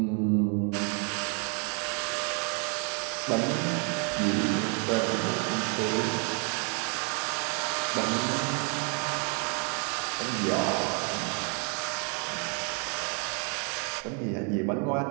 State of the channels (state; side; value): quieter; left; 38.5 dB